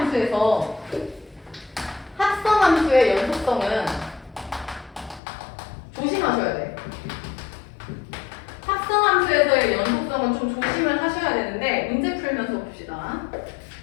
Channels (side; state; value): right; drops out; at 5.2 s